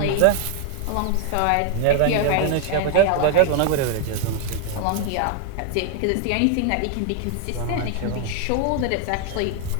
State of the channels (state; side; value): different; both; correlation 0.00